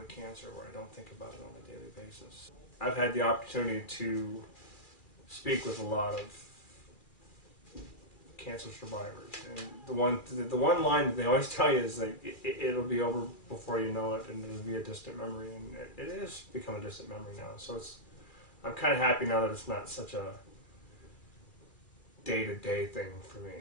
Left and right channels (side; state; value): right; late; 2.4 ms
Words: cancer, where I don't think about it on a daily basis. I've had the opportunity to speak with a lot of cancer survivors, and the one line that they always tell you is like it'll be over before you know it, and it'll be a distant memory, and it is become a distant memory now. So I'm kind of happy now that it's not such a day-to-day thing for me.